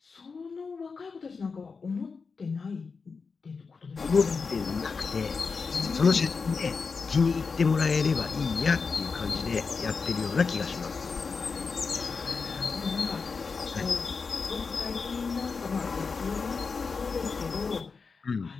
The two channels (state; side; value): quieter; right; 4.9 dB